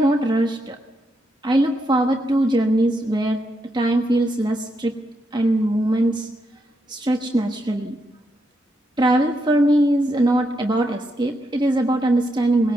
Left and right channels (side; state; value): both; normal; correlation 0.81